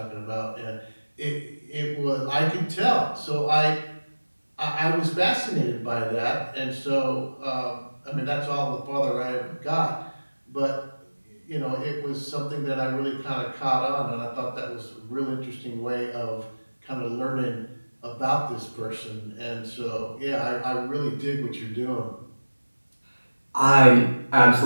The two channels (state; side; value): inverted; both; correlation -1.00